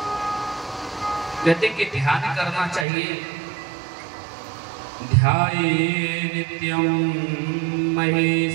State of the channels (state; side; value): drops out; left; at 2.9 s